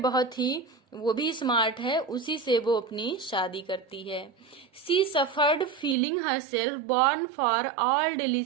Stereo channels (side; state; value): left; drops out; at 6.0 s